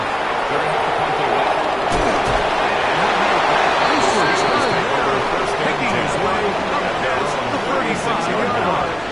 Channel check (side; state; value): right; noise; rumble, 22 dB below the sound